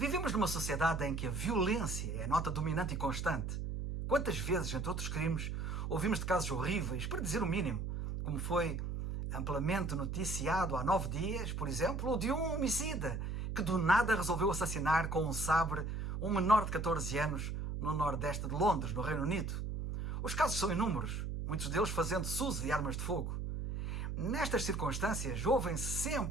numa sociedade em que a violência é a nota dominante e constante. Quantas vezes, entre outros crimes, ouvimos de casos horríveis, para dizer o mínimo, como foi amplamente noticiado há 9 dias, por exemplo, o de um homicida que do nada resolveu assassinar com um sabre um menor de 14 anos no nordeste de Londres, no Reino Unido. Os casos são inúmeros, muitos deles fazendo-se uso de armas de fogo. Nestas circunstâncias, ouvem-se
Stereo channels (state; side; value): noise; right; hum, 3 dB below the sound